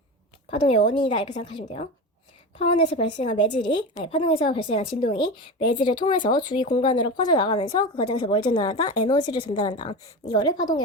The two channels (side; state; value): both; normal; correlation 0.25